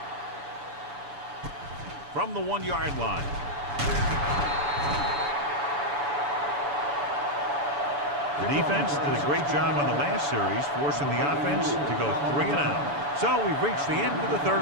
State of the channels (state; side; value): late; left; 7.0 ms